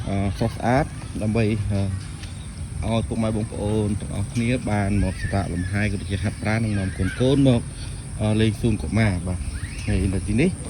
ស្រស់ស្អាតដើម្បីឲ្យពុកម៉ែបងប្អូនទាំងអស់គ្នាបានមកសម្រាកលំហែក៏ដូចជាហាត់ប្រាណនិងនាំកូនមកលេងសួនកុមារបាទហើយនៅទីនេះ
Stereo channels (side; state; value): both; identical; correlation 1.00